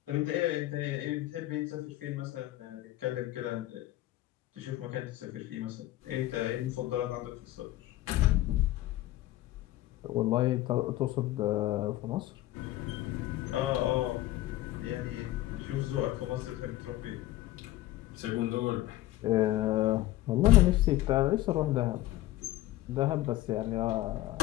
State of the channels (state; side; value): quieter; right; 15.7 dB